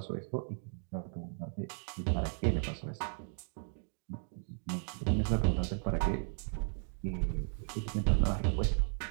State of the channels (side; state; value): left; silent; 54 dB below the other